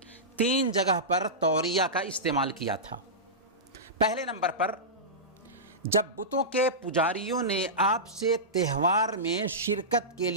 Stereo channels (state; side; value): normal; both; correlation -0.16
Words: 3 جگہ پر توریہ کا استعمال کیا تھا۔ پہلے نمبر پر جب بتوں کے پجاریوں نے آپ سے تہوار میں شرکت کے